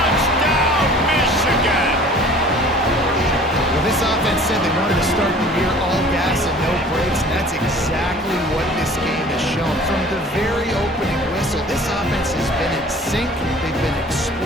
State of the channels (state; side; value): normal; both; correlation 0.48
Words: Michigan! Well, this offense said they wanted to start the year all gas and no brakes, and that's exactly what this game has shown. From the very opening whistle, this offense has been in sync. They've been